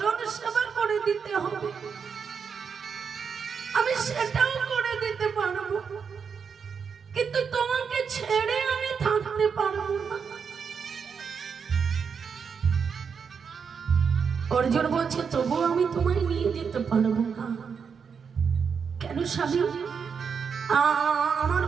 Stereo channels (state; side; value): quieter; left; 6.3 dB